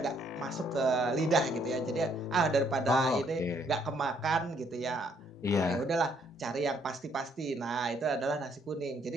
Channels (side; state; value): both; normal; correlation 0.68